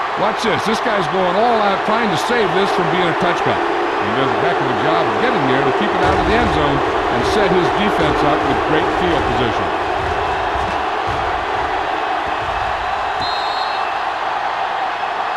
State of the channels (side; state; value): both; identical; correlation 1.00